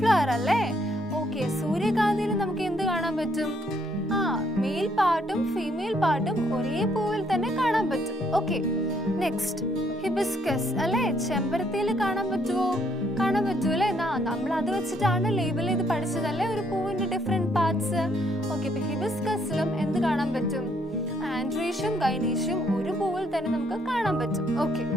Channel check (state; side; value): normal; both; correlation 0.69